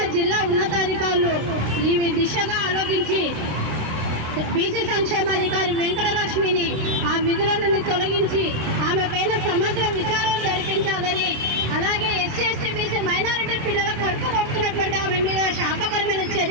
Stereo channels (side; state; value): left; late; 26 ms